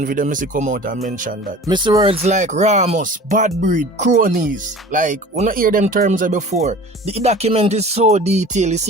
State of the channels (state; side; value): normal; both; correlation 0.41